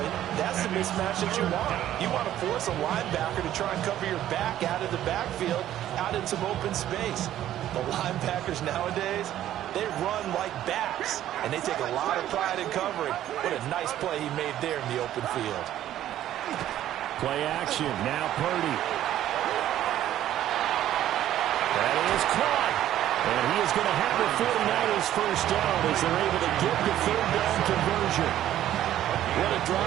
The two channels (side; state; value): left; quieter; 12.4 dB